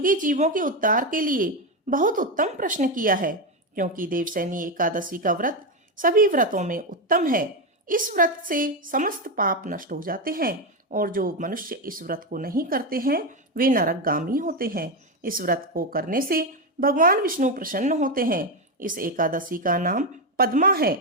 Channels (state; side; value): normal; both; correlation 0.10